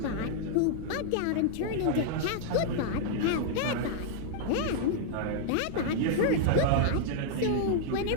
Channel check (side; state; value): both; different; correlation -0.01